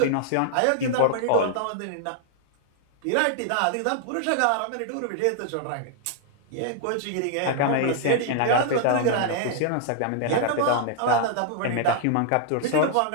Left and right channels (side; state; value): both; different; correlation -0.01